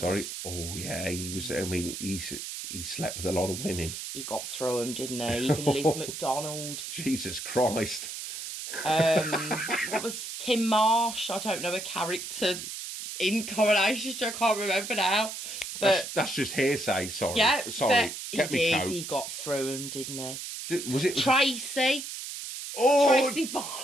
Oh, yeah. He was, I mean, he slept with a lot of women. He got through them, didn't he? Even Liz McDonald. Jesus Christ. What was Kim Marsh? I don't know, a character in Coronation Street. I can't remember now. But that's just hearsay. Sorry. yeah, Sorry. but he did. He got through him, didn't he? Was it Tracy? Oh, Tracy Barlow.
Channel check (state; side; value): noise; right; hiss, 7 dB below the sound